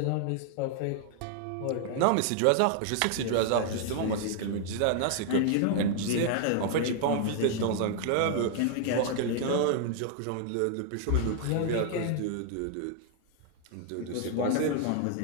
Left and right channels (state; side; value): different; both; correlation 0.00